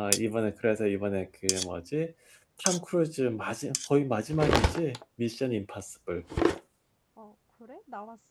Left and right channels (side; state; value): both; identical; correlation 1.00